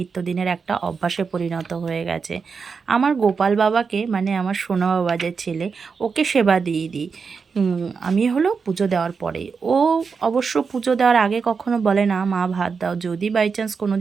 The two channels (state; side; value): quieter; left; 5.4 dB